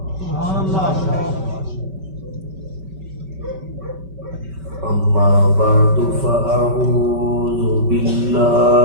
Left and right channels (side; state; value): left; late; 5.2 ms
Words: أما بعد فأعوذ